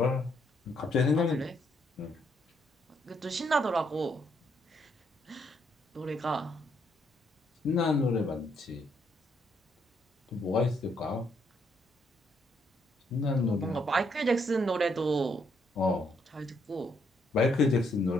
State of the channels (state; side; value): normal; both; correlation 0.73